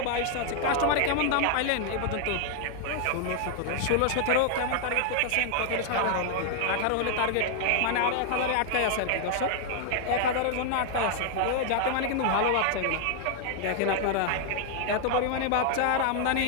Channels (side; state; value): both; different; correlation 0.00